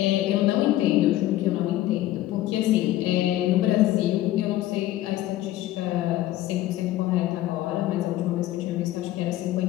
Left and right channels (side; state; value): right; quieter; 14.7 dB